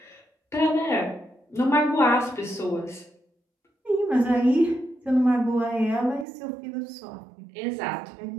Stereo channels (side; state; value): left; drops out; at 6.2 s